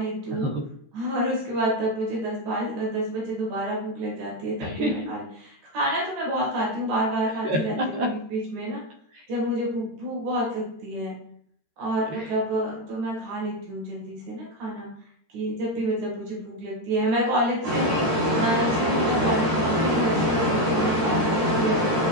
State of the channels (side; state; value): left; late; 13 ms